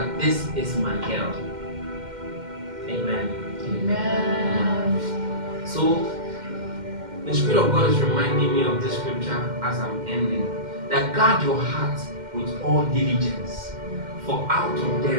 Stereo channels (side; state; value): left; late; 2.1 ms